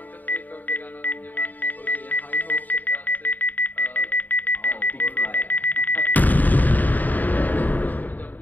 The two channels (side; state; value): right; late; 0.085 ms